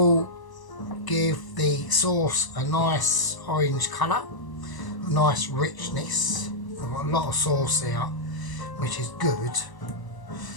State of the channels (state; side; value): late; right; 1.0 ms